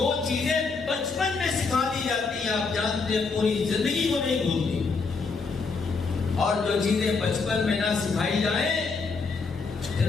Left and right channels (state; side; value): quieter; right; 4.5 dB